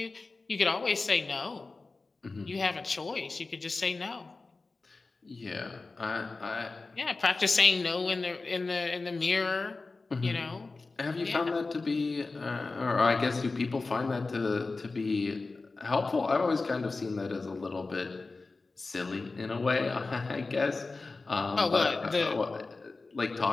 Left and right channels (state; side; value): quieter; right; 3.7 dB